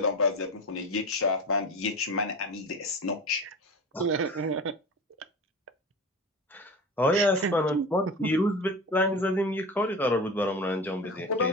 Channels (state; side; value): normal; both; correlation 0.31